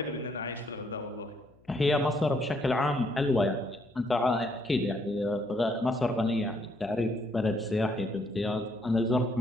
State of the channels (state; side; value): noise; left; hum, 30 dB below the sound